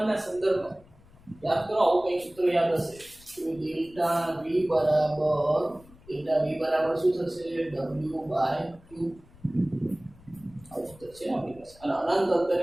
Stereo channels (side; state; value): left; noise; rumble, 24 dB below the sound